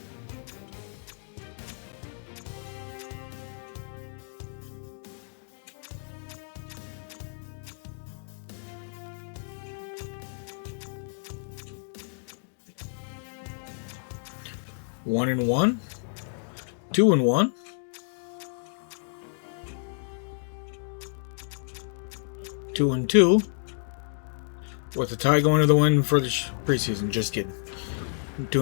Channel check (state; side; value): silent; right; digital silence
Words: One and 1. 2 and 1. 2 and 2. With a tie going to the win for the preseason. Just kidding.